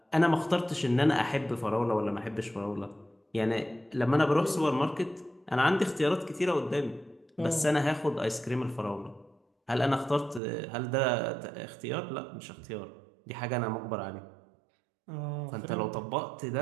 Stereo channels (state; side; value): drops out; left; at 10.4 s